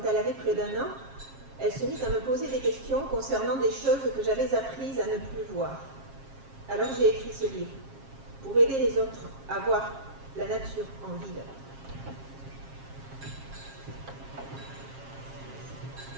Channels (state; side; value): late; left; 7.4 ms